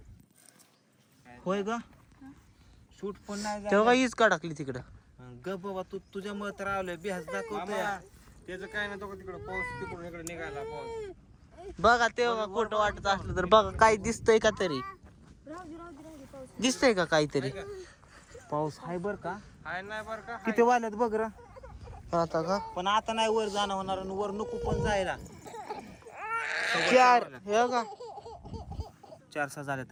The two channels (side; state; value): both; identical; correlation 1.00